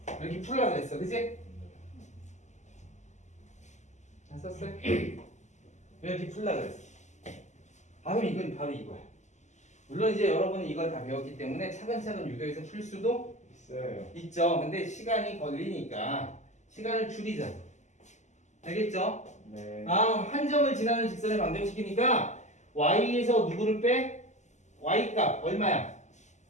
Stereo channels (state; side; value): late; right; 0.34 ms